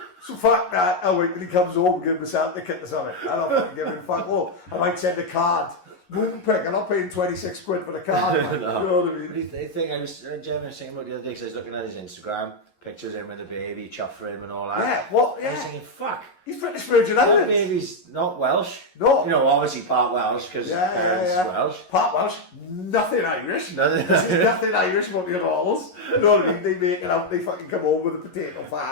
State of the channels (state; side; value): late; right; 11 ms